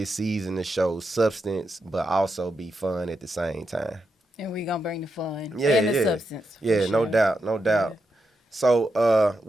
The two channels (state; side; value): normal; both; correlation 0.85